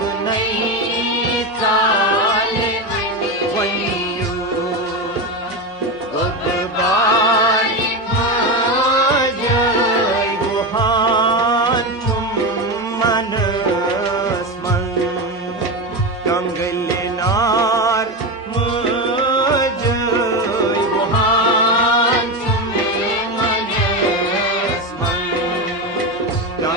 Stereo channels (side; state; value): both; normal; correlation 0.16